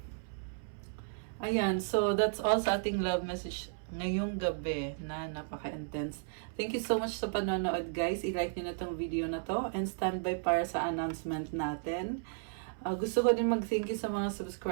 Ayan. So, that's all sa ating love message ngayong gabi na napaka-intense. Thank you so much sa panonood guys. I-like nyo na tong video na to and stand by para sa announcement natin. Gusto ko din mag-thank you sa mga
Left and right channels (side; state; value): left; silent; 55 dB below the other